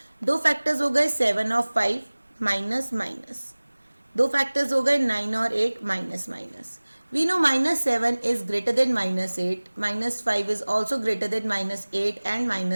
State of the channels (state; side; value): inverted; both; correlation -1.00